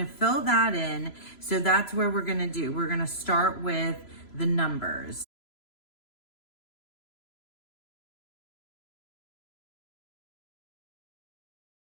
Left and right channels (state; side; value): late; right; 3.0 ms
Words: to fill that in. So that's where we're going to do. We're going to start with the numbers.